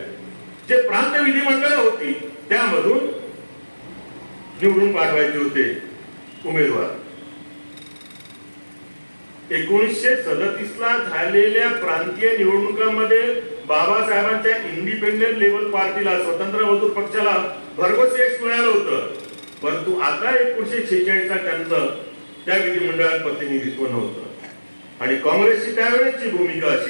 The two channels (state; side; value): inverted; both; correlation -1.00